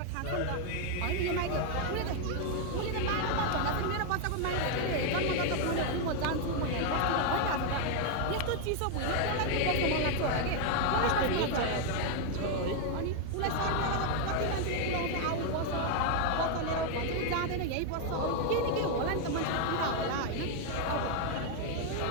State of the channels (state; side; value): different; both; correlation 0.00